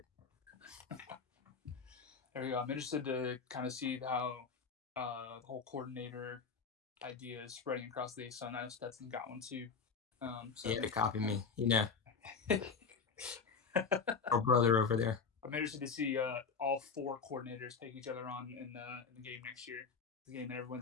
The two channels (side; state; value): right; quieter; 5.5 dB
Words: There we go. I'm interested to kind of see how the whole coordinator idea is spreading across the ASUN. I know Stetson got one too. So Yeah, to copy me, you know, I'm our brother over there. interested to see all four coordinators take each other on in the game next year. The game that